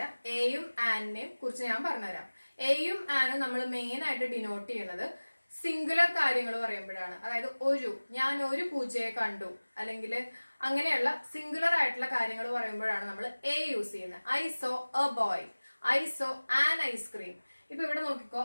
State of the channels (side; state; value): both; inverted; correlation -1.00